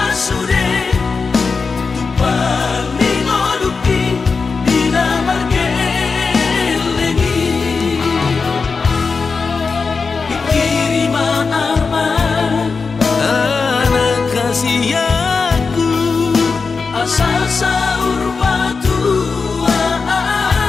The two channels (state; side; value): quieter; right; 4.8 dB